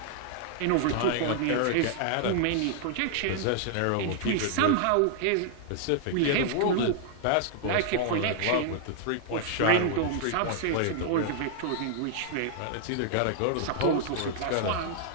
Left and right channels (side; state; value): both; different; correlation -0.01